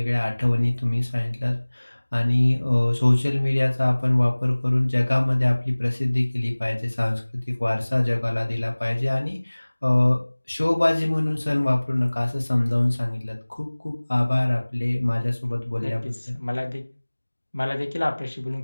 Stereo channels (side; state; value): both; inverted; correlation -1.00